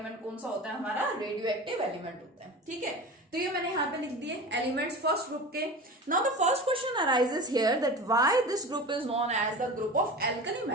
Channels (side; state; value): both; normal; correlation 0.32